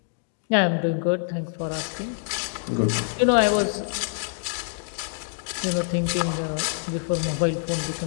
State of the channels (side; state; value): right; silent; digital silence